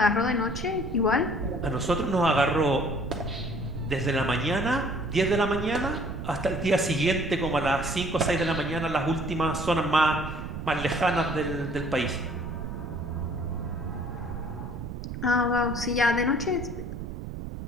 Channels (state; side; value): noise; right; rumble, 8 dB below the sound